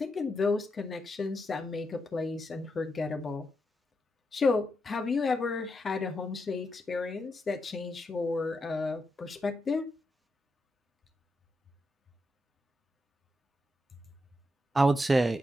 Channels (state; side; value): normal; both; correlation 0.84